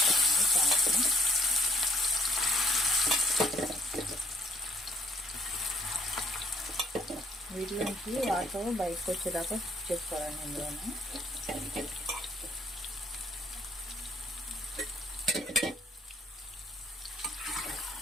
ప్రాన్స్ని. వీటిలోంచి వాటర్ బయటకు వచ్చేదాకా చేసుకోవాలండి. ఇందులోనే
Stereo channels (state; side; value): normal; both; correlation 0.64